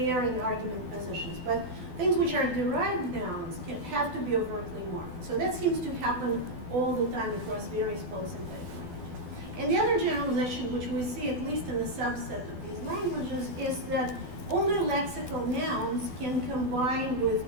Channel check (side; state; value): left; late; 12 ms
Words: in argument positions, but things which are derived nouns can have to be overtly marked. So that seems to happen all the time across various polysynthetic languages. And the other generalization, which we see at least in a subset of these languages, is that only lexical nouns can combine